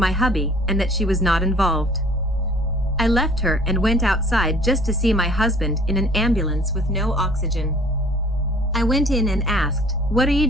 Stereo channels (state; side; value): normal; both; correlation 0.52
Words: hubby and that she was not involved. I left her and went outside just to see my husband in an ambulance with no oxygen. I went in and asked, what are you